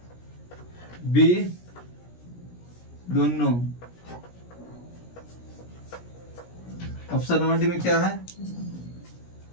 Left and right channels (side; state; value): right; late; 17 ms